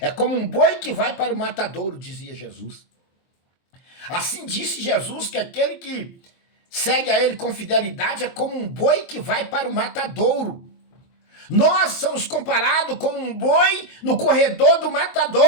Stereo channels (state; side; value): late; right; 23 ms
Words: como um boi que vai para o matadouro, dizia Jesus. Assim disse Jesus que aquele que segue a ele com fidelidade é como um boi que vai para o matadouro. Nós somos comparados como um boi no corredor do